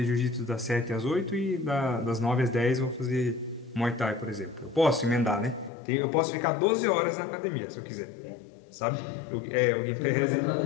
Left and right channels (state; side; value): drops out; right; at 5.7 s